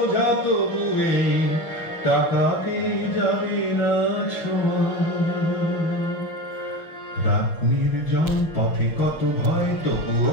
তবুয়ে টাকাকে যাবে না ছোঁয়া, রাত নির্জন পথে কত ভয়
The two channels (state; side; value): late; right; 6.3 ms